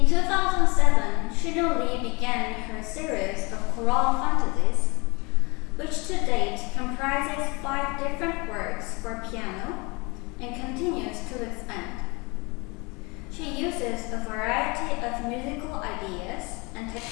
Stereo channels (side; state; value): right; quieter; 27.7 dB